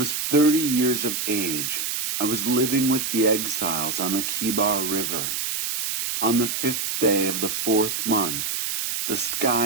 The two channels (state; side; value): noise; right; hiss, 2 dB below the sound